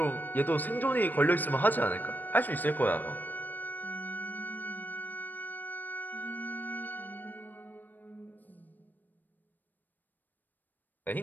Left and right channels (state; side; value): late; right; 0.088 ms